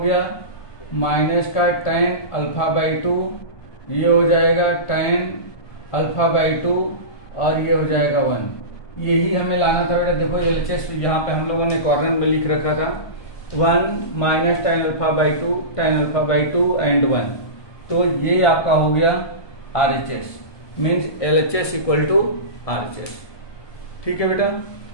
माइनस का टेन अल्फा बाई 2, ये हो जाएगा टेन अल्फा बाई 2 और ये हो जाएगा 1। यही हमें लाना था बेटा। देखो एलएचएस यहाँ पे हम लोगों ने कॉर्नर में लिख रखा था 1 minus tan alpha by 2 tan alpha by 2 and 1, तो ये आपका हो गया RHS, means LHS equal to RHS. ठीक है बेटा,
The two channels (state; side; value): late; right; 1.2 ms